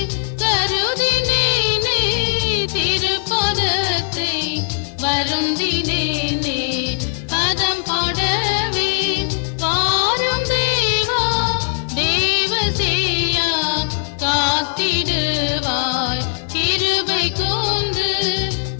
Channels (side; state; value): right; silent; digital silence